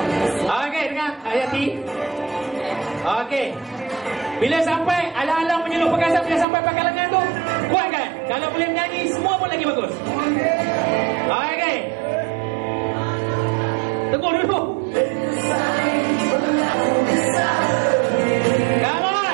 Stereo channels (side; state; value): left; drops out; at 6.5 s